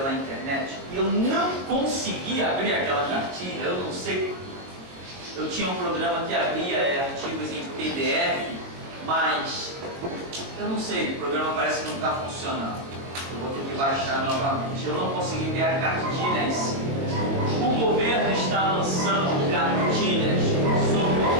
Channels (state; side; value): late; left; 22 ms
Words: internet e eu não consegui abrir aquela cartilha, eu não sei. Eu tinha um programa que abria artigos em PDF, mas eu não sei, o programa parece que não está funcionando. Eu vou ter que baixar novamente. Eu não consegui ver a cartilha em si. O governo está lançando cartilhas